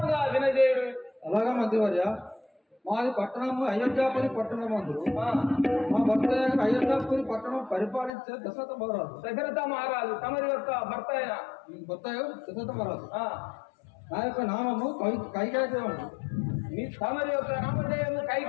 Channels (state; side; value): drops out; right; at 8.1 s